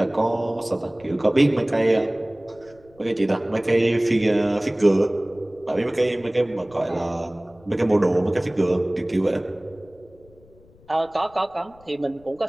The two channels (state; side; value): noise; left; rumble, 27 dB below the sound